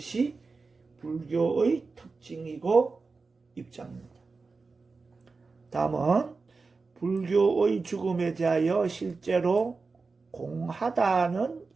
불교의 특징이고 입장입니다. 다음은 불교의 죽음에 대하여 실제로 공하다는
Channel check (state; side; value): quieter; left; 4.2 dB